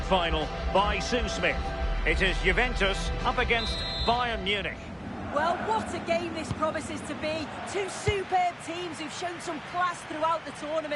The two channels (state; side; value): identical; both; correlation 1.00